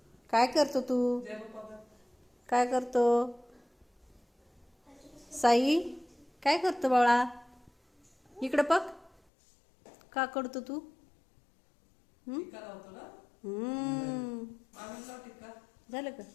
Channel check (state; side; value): drops out; right; at 9.1 s